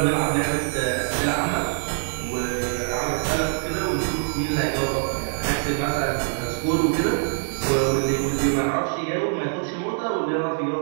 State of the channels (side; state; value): left; silent; 63 dB below the other